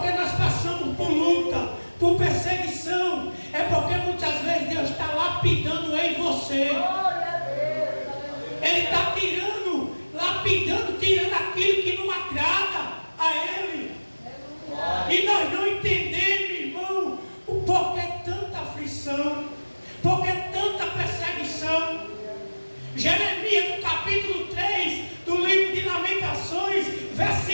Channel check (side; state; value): both; inverted; correlation -1.00